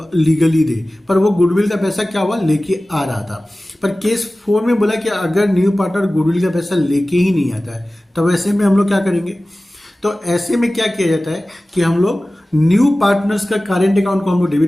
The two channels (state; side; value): normal; both; correlation 0.97